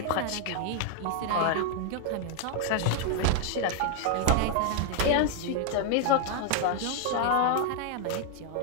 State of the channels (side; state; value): both; different; correlation 0.00